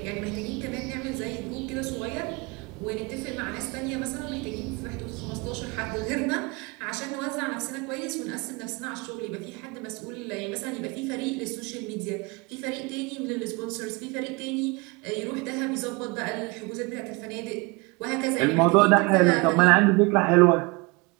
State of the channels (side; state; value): left; quieter; 26.8 dB